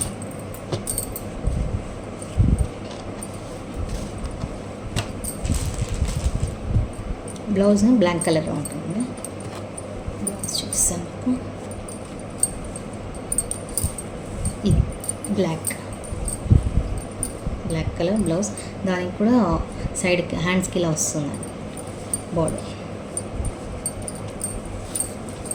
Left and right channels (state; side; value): identical; both; correlation 1.00